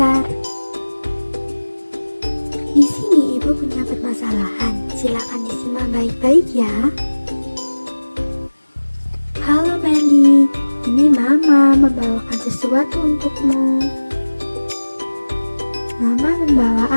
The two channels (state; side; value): inverted; both; correlation -1.00